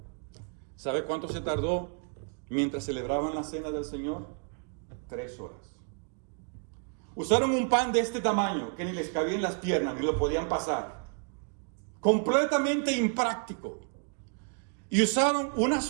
¿Sabe cuánto se tardó mientras celebraban la cena del Señor? 3 horas. Usaron un pan de este tamaño que ni les cabía en las piernas, ni lo podían pasar. Completamente impráctico. Y usaron una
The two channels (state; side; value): quieter; left; 39.8 dB